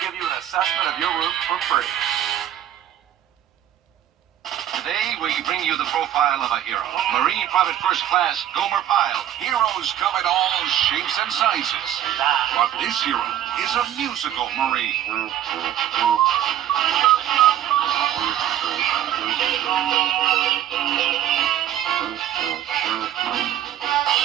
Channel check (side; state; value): left; quieter; 11.3 dB